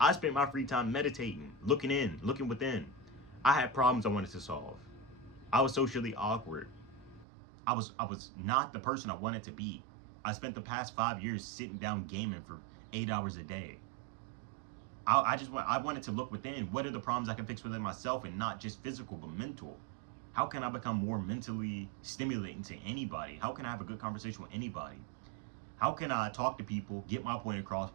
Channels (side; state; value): left; drops out; at 7.2 s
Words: spent my free time meditating, looking within. I had problems I wanted to solve. I was socially awkward. I was not the person I wanted to be. I spent the past 5 years sitting down gaming for 8 hours a day. I wanted to look within. What are the problems I can fix within myself, and not just physical but mental? How can I become more mentally stimulating to anybody? How can I have a good conversation with anybody? How can I talk to people, get my point across